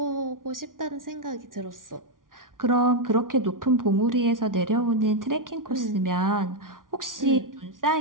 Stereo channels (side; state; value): left; late; 0.89 ms